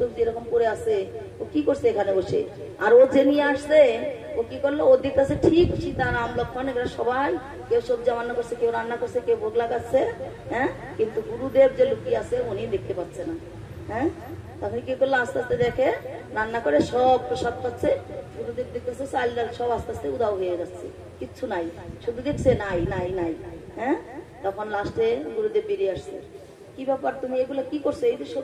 এরকম করে আছে, ও কি করছে এখানে বসে। আর ও যে নিয়ে আসছে, ও কি করলো, ও দিতেছে ঠিক সীতা রাম লক্ষণ এগুলো সবাই, কেউ সবজি রান্না করছে, কেউ রান্না করছে, কেউ ভোগ লাগাচ্ছে। হ্যাঁ, কিন্তু গুরুদেব যে লুকিয়ে আছে উনি দেখতে পাচ্ছে না। হ্যাঁ, তখন কি করলো, আস্তে আস্তে দেখে রান্না করে সব প্রসাদ পাচ্ছে, গুরুদেব দেখতেছে চাল ডাল সব আস্তে আস্তে উদাও হয়ে যাচ্ছে, কিচ্ছু নাই, শুধু দেখছে নাই নাই নাই। হ্যাঁ, তখন লাস্টে গুরুদেব বেরিয়ে আসছে, কি ব্যাপার তুমি এগুলো কি করছো, এই যে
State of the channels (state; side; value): identical; both; correlation 1.00